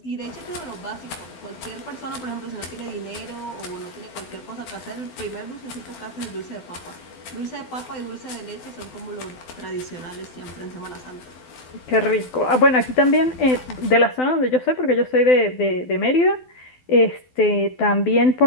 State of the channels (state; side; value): late; right; 12 ms